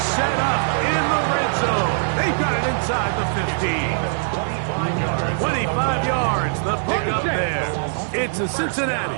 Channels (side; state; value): left; silent; digital silence